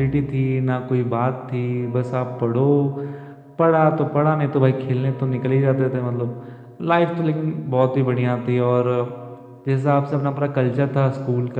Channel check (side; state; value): both; identical; correlation 1.00